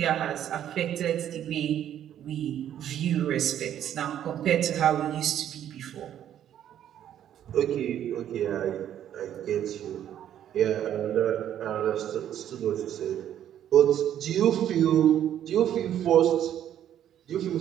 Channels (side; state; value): left; quieter; 10.6 dB